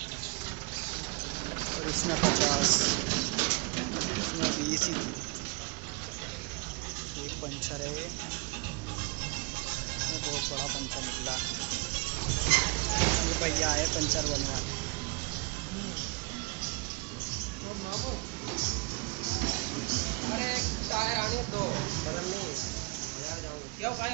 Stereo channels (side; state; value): left; quieter; 29.0 dB